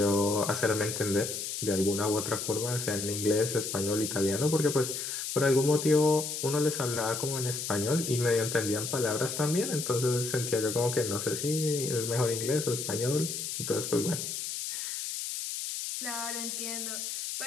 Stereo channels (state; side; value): noise; left; hiss, 4 dB below the sound